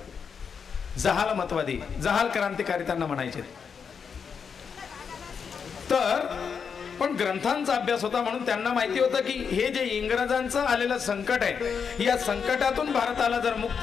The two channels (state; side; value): quieter; right; 6.4 dB